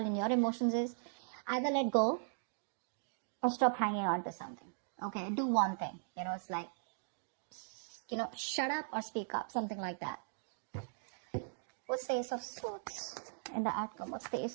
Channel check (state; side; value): silent; left; digital silence